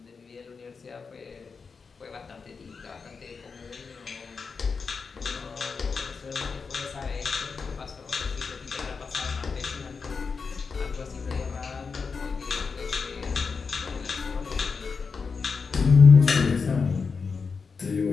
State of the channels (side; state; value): right; quieter; 5.1 dB